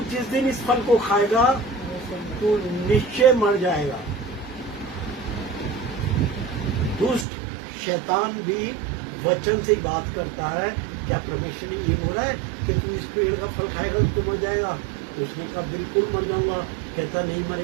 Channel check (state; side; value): drops out; left; at 7.2 s